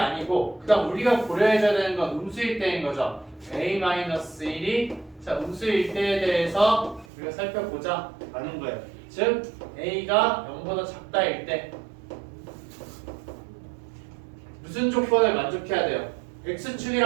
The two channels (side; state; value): left; drops out; at 7.1 s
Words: 그다음 우리가 고려해줘야 되는 건 음수일 때인 거죠. a-1이 자 음수일 때에 대해서 우리가 살펴보자 라는 거예요. 즉 a가 0보다 작다일 때 무슨 조건을 만족해야 돼요?